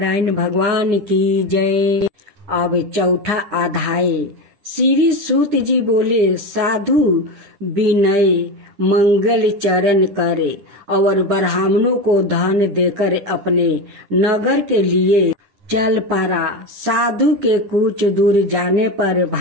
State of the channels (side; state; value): left; late; 10 ms